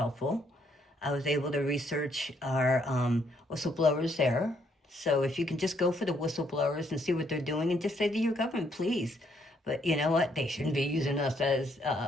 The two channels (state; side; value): normal; both; correlation 0.71